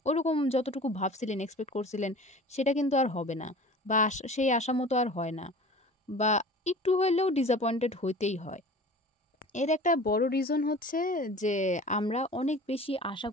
ওরকম যতটুকু ভাবছিলেন, এক্সপেক্ট করছিলেন সেটা কিন্তু আর হবে না বা সেই আশা মতো আর হয় না বা একটু হইলেও ডিসঅ্যাপয়েন্টেড হইতেই হয়। এর একটা বড় রিজন হচ্ছে যে আমরা অনেক বেশি আশা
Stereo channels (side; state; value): both; normal; correlation 0.41